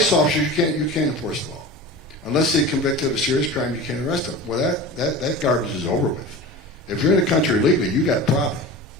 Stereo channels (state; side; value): normal; both; correlation 0.33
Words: officers you can't enforce the law. Unless they convicted of a serious crime, you can't arrest them. Well, that garbage is over with. If you're in the country illegally, you got a problem.